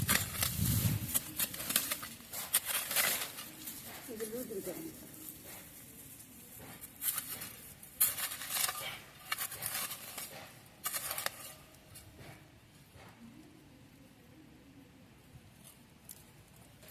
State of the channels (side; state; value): both; identical; correlation 1.00